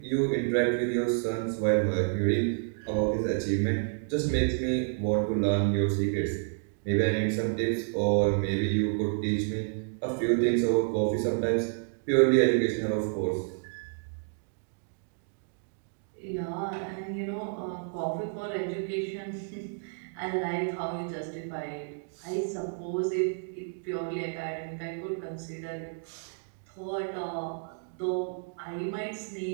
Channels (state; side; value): silent; left; digital silence